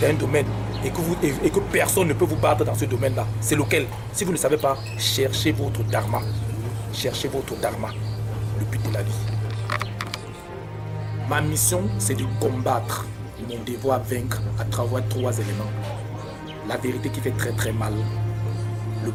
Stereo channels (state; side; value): identical; both; correlation 1.00